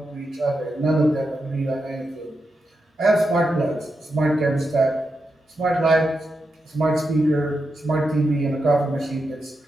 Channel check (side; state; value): both; normal; correlation 0.87